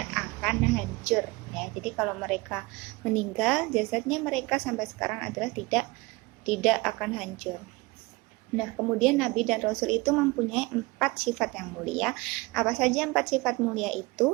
akan hancur ya. Jadi kalau mereka meninggal, jasadnya mereka sampai sekarang adalah tidak akan hancur. Nah, kemudian Nabi dan Rasul itu mempunyai 4 sifat yang mulia. Apa saja 4 sifat mulia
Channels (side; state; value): left; quieter; 23.8 dB